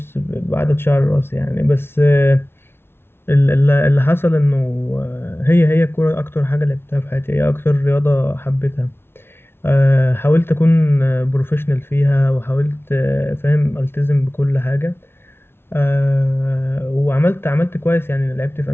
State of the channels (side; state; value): right; late; 0.12 ms